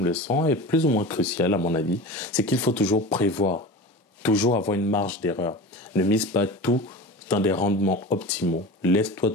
leçon est plus ou moins cruciale à mon avis, c'est qu'il faut toujours prévoir, toujours avoir une marge d'erreur. Ne mise pas tout dans des rendements optimaux. Laisse-toi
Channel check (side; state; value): both; normal; correlation 0.32